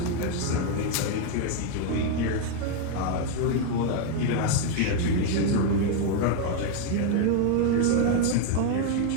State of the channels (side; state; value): both; different; correlation 0.01